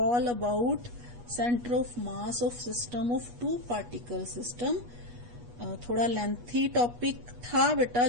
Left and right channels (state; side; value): late; left; 8.3 ms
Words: about centre of mass of system of 2 particle system. थोड़ा लेंथी टॉपिक था बेटा